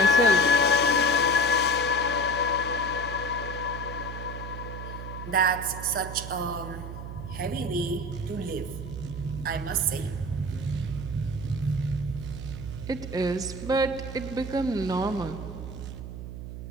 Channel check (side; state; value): right; noise; hum, 9 dB below the sound